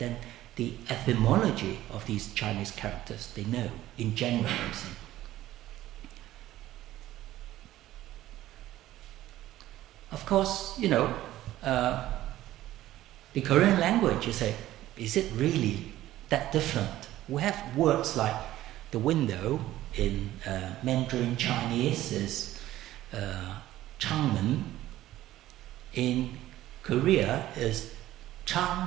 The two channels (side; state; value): left; quieter; 14.6 dB